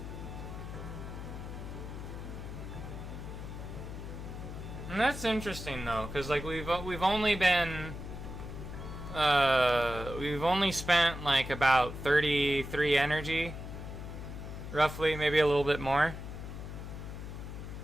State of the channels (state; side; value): noise; left; hum, 9 dB below the sound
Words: And that's interesting though, because like we've only been we've only spent like about 33 energy, roughly, maybe a little bit more.